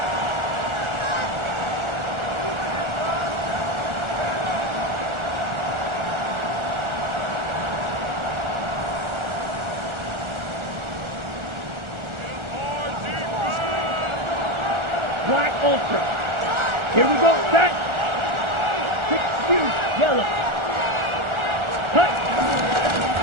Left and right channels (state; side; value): late; left; 1.4 ms